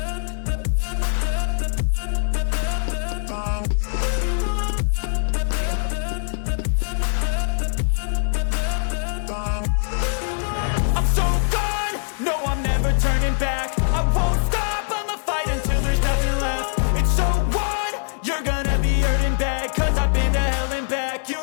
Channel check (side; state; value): right; silent; digital silence